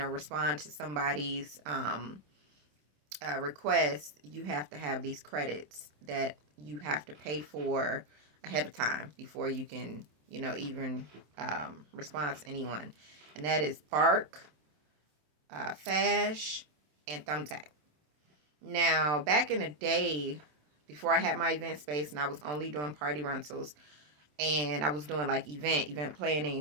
respond to somebody's request, you have to have these credits that you have to pay for ahead of time before you can, even respond to anyone. And that is Bark, Fash, and Thumbtack. Now, back in the day, before I had my event space and I was only doing party rentals and I was doing like event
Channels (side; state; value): left; late; 27 ms